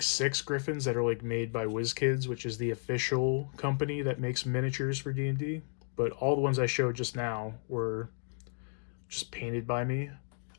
6 griffins that are like made by WizKids, which is the official company that makes miniatures for D&D. But all the ones I showed just now were just painted by me.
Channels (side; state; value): right; silent; 56 dB below the other